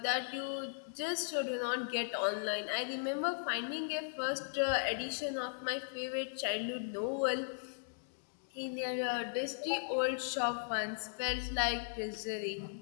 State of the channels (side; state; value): right; silent; digital silence